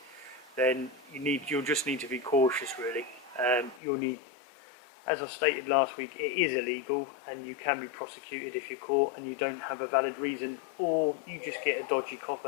then you'll just need to be cautious really. You'll need as I stated last week, it is illegal and you can be prosecuted if you're caught and you don't have a valid reason, or you just get a dodgy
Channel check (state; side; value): drops out; right; at 3.8 s